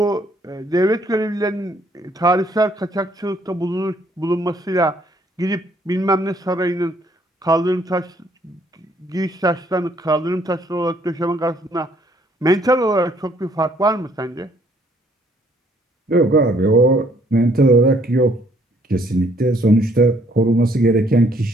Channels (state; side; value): normal; both; correlation 0.65